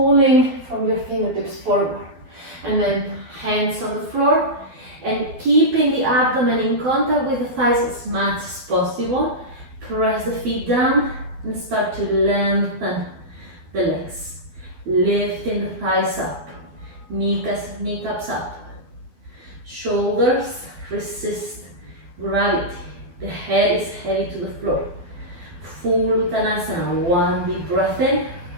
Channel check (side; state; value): left; late; 12 ms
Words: from your fingertips forward, and then hands on the floor, and keeping the abdomen in contact with the thighs as much as possible. Press the feet down and start to lengthen the legs. Lifting the thighs up, kneecaps up. Shoulders resist gravity. The head is heavy to the floor. Full Uttanasana. One deep breath in.